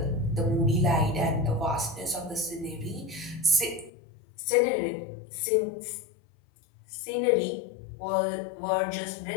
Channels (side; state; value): right; drops out; at 3.9 s